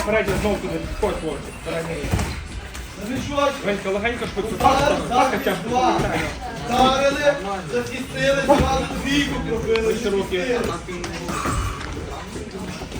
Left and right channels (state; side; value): identical; both; correlation 1.00